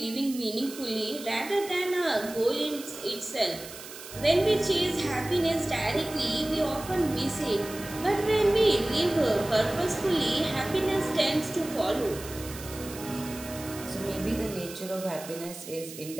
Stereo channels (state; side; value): noise; right; hiss, 14 dB below the sound